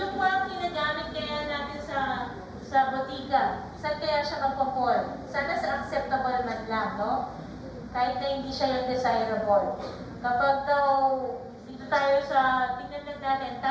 mga ginagamit kaya natin sa botika, saan kaya siya magpo-fall? Sana sa acceptable man lang, no? Kahit na hindi siya yung desirable. Kapag daw, dito tayo sa, tingnan lang natin,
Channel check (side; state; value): both; identical; correlation 1.00